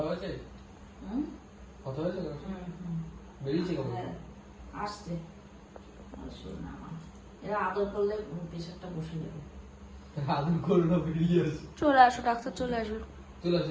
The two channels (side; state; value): both; identical; correlation 1.00